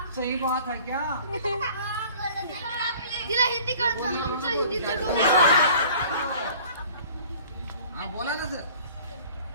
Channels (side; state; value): both; inverted; correlation -0.48